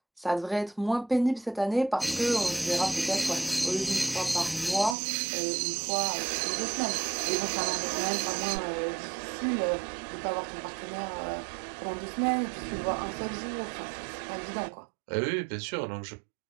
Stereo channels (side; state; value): left; drops out; at 5.0 s